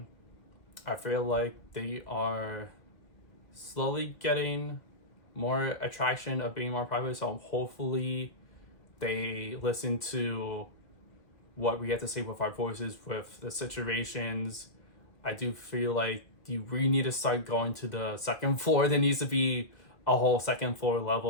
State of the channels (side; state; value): right; late; 2.0 ms